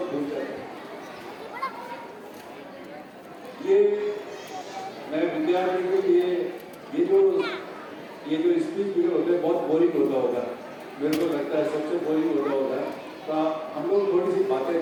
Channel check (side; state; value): both; identical; correlation 1.00